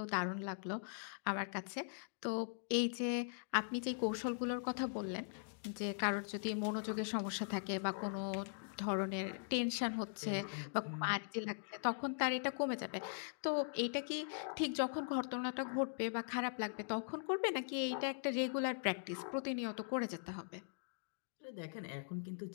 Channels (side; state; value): right; silent; digital silence